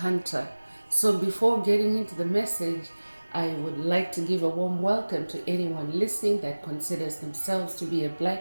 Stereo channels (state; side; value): inverted; both; correlation -1.00